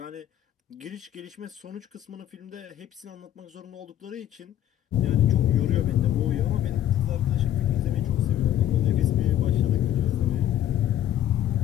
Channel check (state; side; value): quieter; right; 11.5 dB